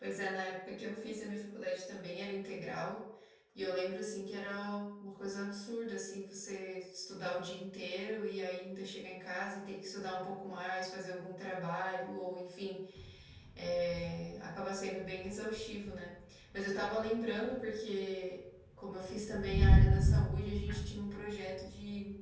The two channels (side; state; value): both; identical; correlation 1.00